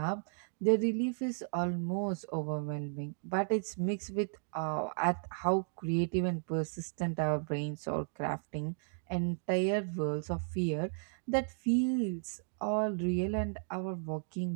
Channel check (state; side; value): silent; left; digital silence